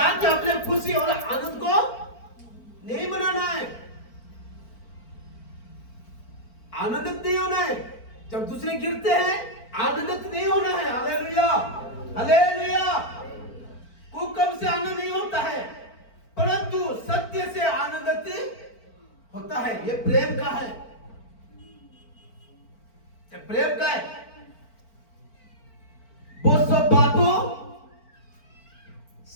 अपने खुशी और आनंद को नहीं बनाना है, आनंदित नहीं होना है। जब दूसरे गिरते हैं आनंदित नहीं होना है। Hallelujah, hallelujah. कुकर्म से आनंद नहीं होता है, परंतु सत्य से आनंदित होता है। ये प्रेम का है, ये प्रेम का है। वो सब बातों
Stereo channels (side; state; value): right; late; 4.4 ms